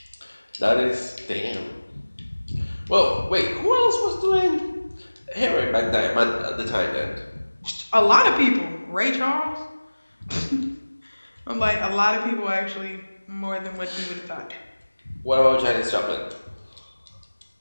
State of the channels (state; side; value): inverted; both; correlation -1.00